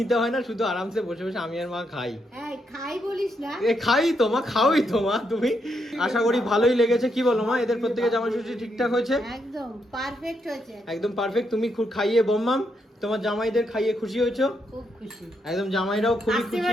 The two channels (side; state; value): both; normal; correlation 0.79